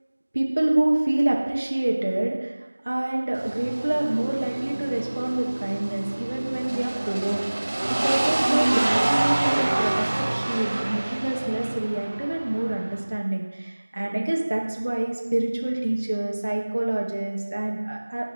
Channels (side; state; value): both; inverted; correlation -1.00